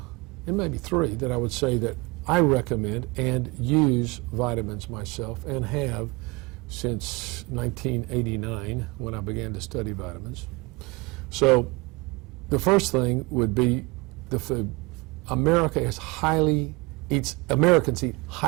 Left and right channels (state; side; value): quieter; left; 25.6 dB